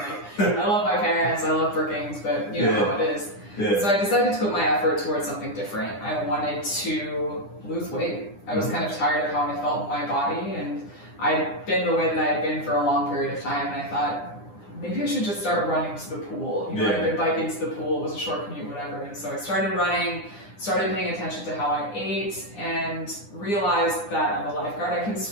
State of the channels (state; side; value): late; right; 9.8 ms